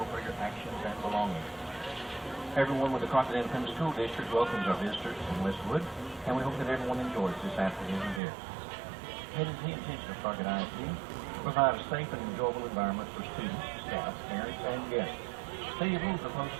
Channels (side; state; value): left; drops out; at 8.2 s